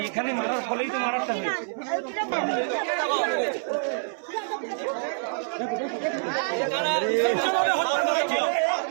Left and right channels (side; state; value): left; silent; 61 dB below the other